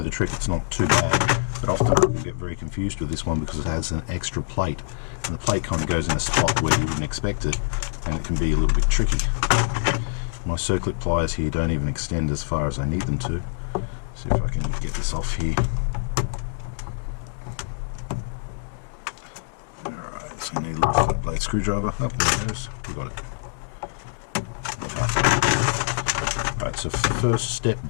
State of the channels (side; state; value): right; silent; 62 dB below the other